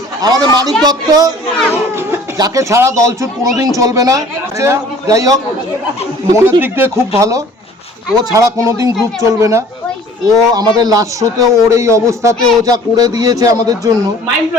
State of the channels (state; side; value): normal; both; correlation 0.50